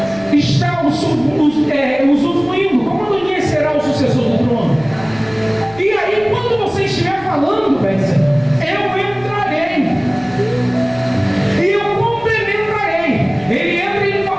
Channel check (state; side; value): noise; left; rumble, 22 dB below the sound